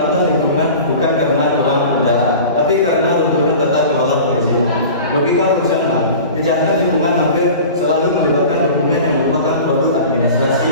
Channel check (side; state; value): both; inverted; correlation -0.38